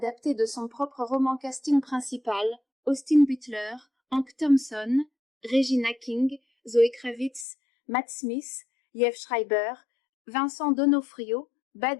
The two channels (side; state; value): right; drops out; at 7.5 s